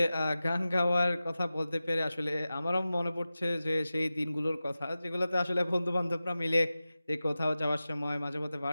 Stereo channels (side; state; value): both; inverted; correlation -0.95